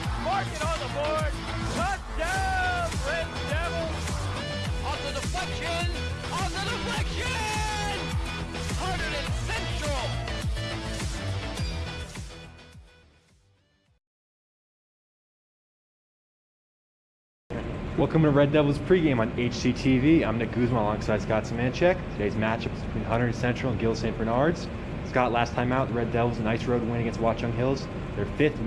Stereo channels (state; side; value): identical; both; correlation 1.00